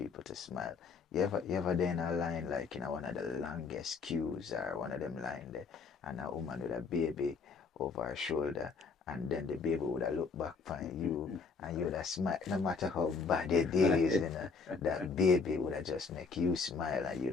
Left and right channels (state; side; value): quieter; right; 5.0 dB